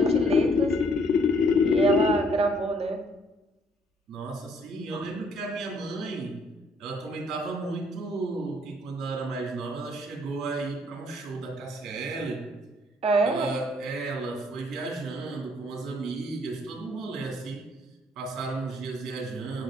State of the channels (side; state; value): both; normal; correlation 0.64